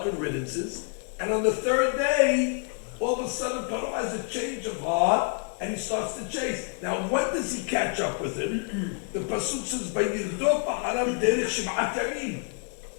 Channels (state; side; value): quieter; right; 37.5 dB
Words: and riddances. And on the third day, all of a sudden Paro has a change of heart, and he starts to chase. Now, when does he catch up with him? The Pasuk says, "Vayirdot ba'aram derech sheb'at yamim."